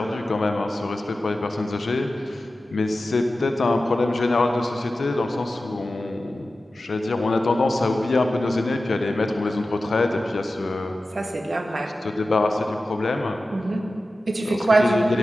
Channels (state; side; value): normal; both; correlation 0.94